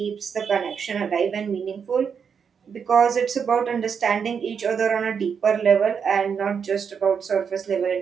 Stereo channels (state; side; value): quieter; left; 6.7 dB